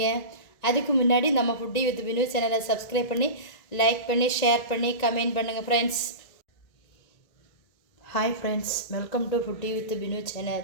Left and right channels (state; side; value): late; right; 1.9 ms